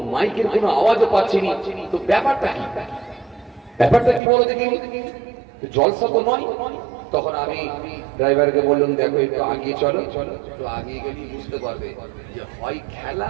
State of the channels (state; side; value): drops out; left; at 4.2 s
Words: মাইকের কোনো আওয়াজও পাচ্ছি না, তো ব্যাপারটা কি? ব্যাপারটা কি বলো দেখি? জলসা তো নয়, তখন আমি ড্রাইভারকে বললাম, দেখো একটু আগিয়ে চলো। একটু আগিয়ে গেলেই বুঝতে পারবে যে হয় খেলা